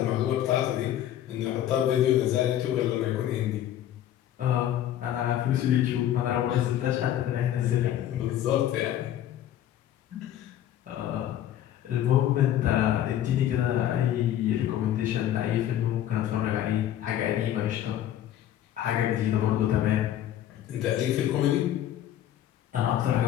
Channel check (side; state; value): right; quieter; 11.7 dB